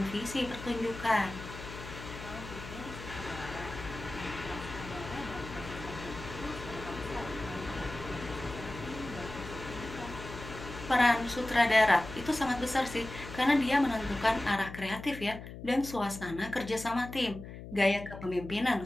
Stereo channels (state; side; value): noise; left; hum, 12 dB below the sound